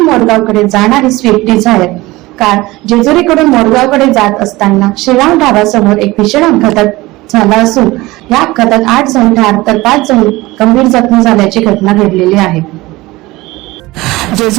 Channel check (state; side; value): quieter; left; 20.1 dB